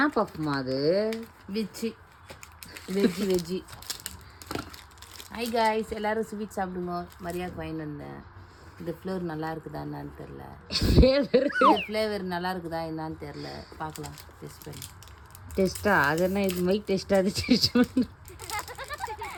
பஃப்மா அது? வெஜ்ஜி. ஹை காய்ஸ், எல்லோரும் ஸ்வீட் சாப்பிடுங்க. மரியாதைக்கு வாங்கிட்டு வந்தேன். இந்த ஃப்ளேவர் நல்லா இருக்குதா என்னான்னு தெரில. ஃப்ளேவர் நல்லா இருக்குதா என்னான்னு தெரில. பார்க்கலாம் டெஸ்ட் பண்ணி. டெஸ்ட்டா? அது என்ன இது மைக் டெஸ்ட்டா? அது டெஸ்ட் பண்ணு.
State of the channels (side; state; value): both; identical; correlation 1.00